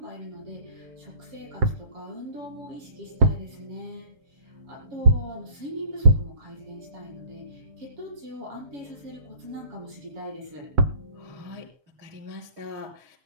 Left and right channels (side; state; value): left; late; 7.1 ms